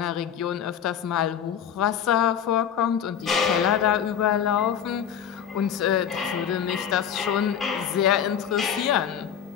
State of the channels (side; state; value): right; quieter; 8.7 dB